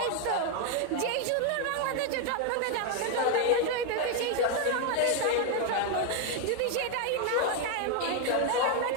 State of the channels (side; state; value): both; different; correlation 0.01